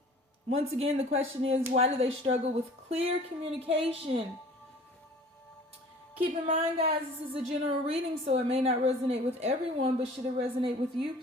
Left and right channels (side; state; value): both; normal; correlation 0.47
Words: Once again, the question is, why do they struggle with clear communication? Keep in mind, guys, this is a general reading, so it may not resonate with everyone, but should it resonate with you,